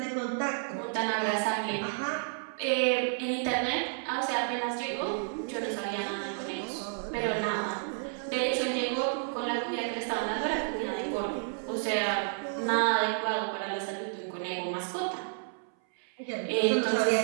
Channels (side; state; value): left; silent; 57 dB below the other